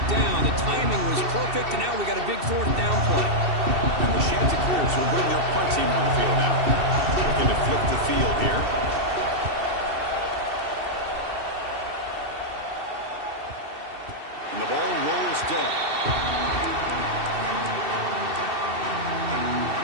down. The timing was perfect, and now we got a big 4th down play. And the Chanticleers will bring their punt team on the field now. Looking to flip the field here. And the ball rolls dead.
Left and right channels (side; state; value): left; late; 2.7 ms